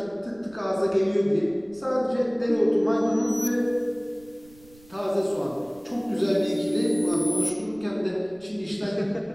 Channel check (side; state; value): right; noise; rumble, 27 dB below the sound